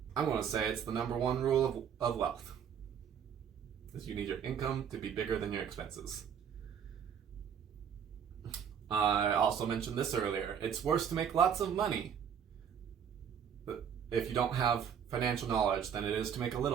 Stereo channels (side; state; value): left; quieter; 8.0 dB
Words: I'm going to say it's the number 1 rule of wealth. Is you need your income to be bigger than your expenses. I also mentioned this earlier. It's worse to make lots of money if you don't have financial knowledge than it is to make a